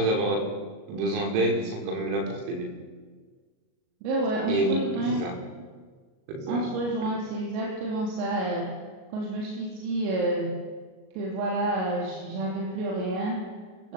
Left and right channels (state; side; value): late; left; 38 ms